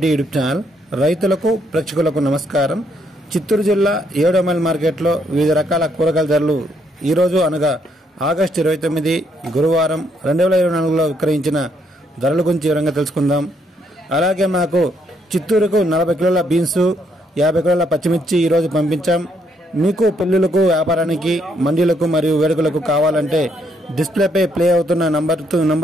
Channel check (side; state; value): both; normal; correlation 0.73